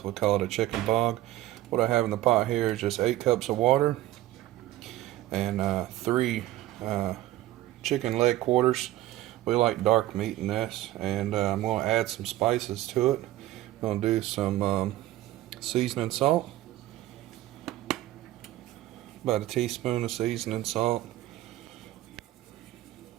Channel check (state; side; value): quieter; left; 15.3 dB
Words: we call it a chicken bog. What I have in the pot here is just 8 cups of water and 3 chicken leg quarters. We like dark meat in this, and I'm going to add some spices to it. I'm going to do some seasoning salt. About a teaspoon of seasoning salt,